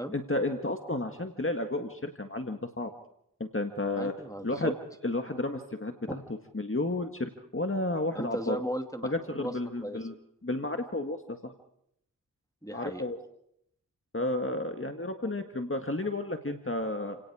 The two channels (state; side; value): normal; both; correlation 0.23